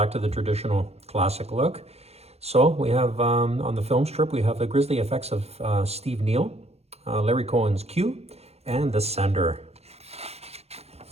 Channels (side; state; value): left; late; 0.30 ms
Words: to the traditional classic look. So we have, on the film strip, we have the grisly effects of Steve Neal, Larry Cohen's Q, and The Sender.